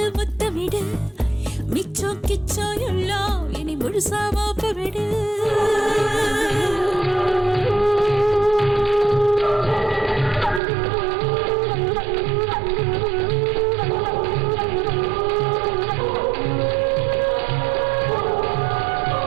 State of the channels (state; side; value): drops out; left; at 10.6 s